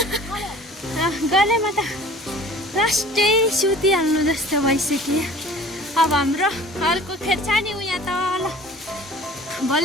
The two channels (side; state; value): both; normal; correlation 0.46